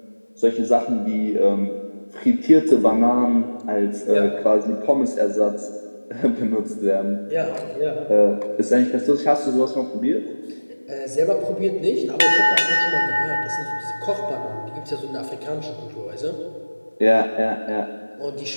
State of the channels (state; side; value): inverted; both; correlation -1.00